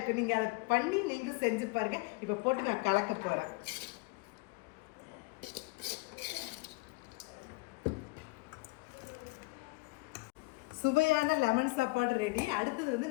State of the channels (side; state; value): right; quieter; 25.2 dB